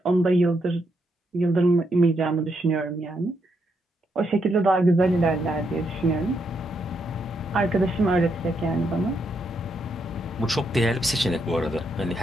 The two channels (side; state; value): both; normal; correlation 0.79